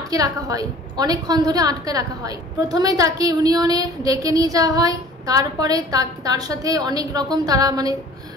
রাখা হয়, অনেকক্ষণ ধরে আটকে রাখা হয়। প্রথমে তাকে ইউনিয়নে ডেকে নিয়ে যাওয়া হয়, তারপরে তার সাথে অনেক রকম তারা মানে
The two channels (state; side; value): normal; both; correlation 0.48